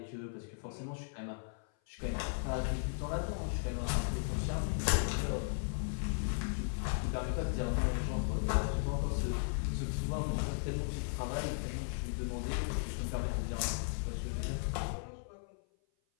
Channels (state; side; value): silent; right; 53 dB below the other